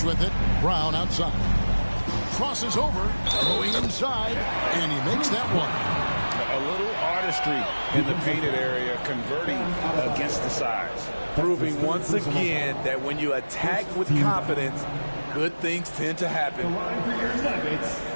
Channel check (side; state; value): both; inverted; correlation -1.00